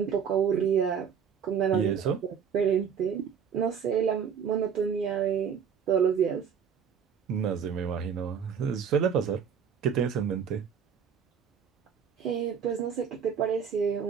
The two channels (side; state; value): left; quieter; 7.3 dB